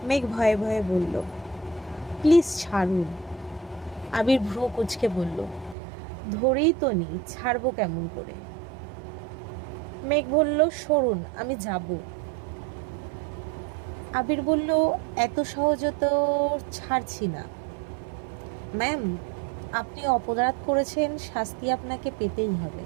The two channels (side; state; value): left; drops out; at 5.8 s